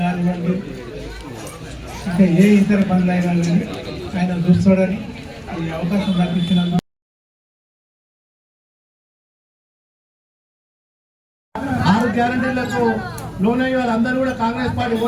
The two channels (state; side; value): identical; both; correlation 1.00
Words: కానివ్వండి, ఇంకా ఏ ఇతర పనులు అయినా కానీ ఆయన చూస్తాడని ఈ అవకాశం కల్పించినందుకు 6 గ్యారంటీలకు లోనయ్యి వాళ్ళందరూ కూడా కాంగ్రెస్ పార్టీ